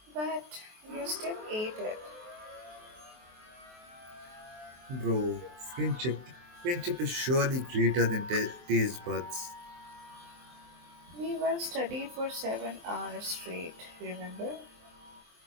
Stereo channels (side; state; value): left; late; 23 ms